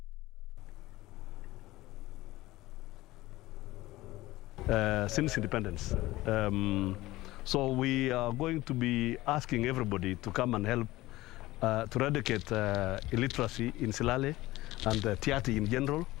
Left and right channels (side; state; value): right; quieter; 18.0 dB